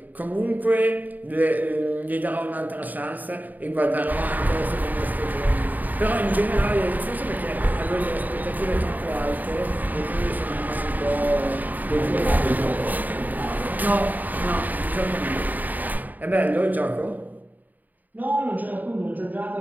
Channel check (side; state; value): left; late; 0.083 ms